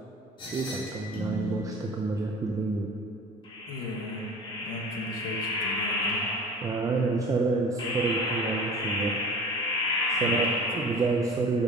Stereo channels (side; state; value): both; normal; correlation 0.40